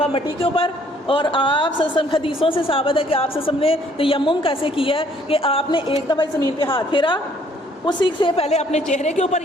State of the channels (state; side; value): normal; both; correlation 0.62